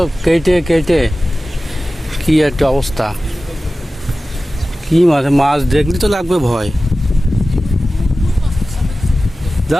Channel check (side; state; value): both; normal; correlation 0.96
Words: কেটে কেটে কি একটা অবস্থা। কি মাছ, মাছ দেখলি তো লাগবে ভয়।